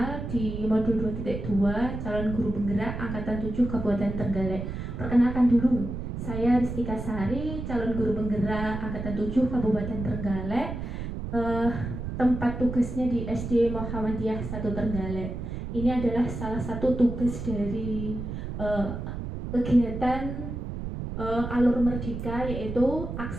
di modul 2.2 calon guru penggerak angkatan 7 Kabupaten Trenggalek. Perkenalkan dulu, saya Ristika Sari, calon guru penggerak angkatan 7 Kabupaten Trenggalek. Tempat tugasnya di SD Muhammadiyah 1 Trenggalek. Ini adalah salah satu tugas dari kegiatan Alur Merdeka, yaitu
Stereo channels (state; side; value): noise; right; rumble, 6 dB below the sound